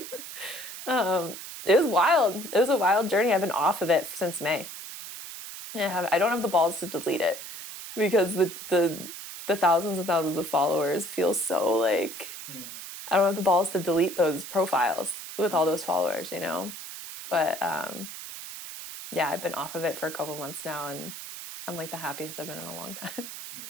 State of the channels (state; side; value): noise; right; hiss, 11 dB below the sound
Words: it was wild. It was a wild journey. I've been off of it since May. I don't have the balls to delete it because the thousands and thousands of followers feel so like, I don't have the balls to delete those profiles with all those followers, you know? But yeah, I've been off of it for a couple months now, and I'm like the happiest I've been in a long time.